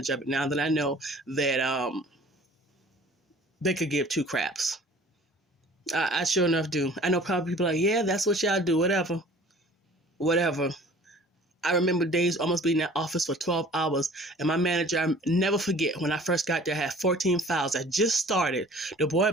of it now that I know that they could give 2 craps. I sure enough do. I know probably people are like, yeah, that's what y'all do. Whatever. I remember days almost being in that office for 12 hours. And my manager, I never forget, when I first got there, I had 14 files. I just started. The boy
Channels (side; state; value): both; normal; correlation 0.49